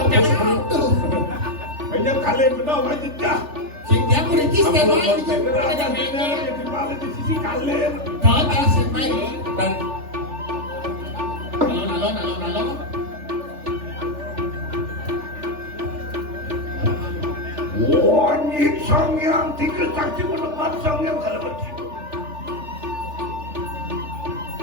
yang tuh. Banyak kali benar wajib dah. Dia kuritis dia main. Benar ada benar di balik di sisi kalian. Kau tak semai. dan Alon. Wajib sang yang tiga saksi menepat sang yang kalau begitu.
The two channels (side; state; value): left; late; 3.4 ms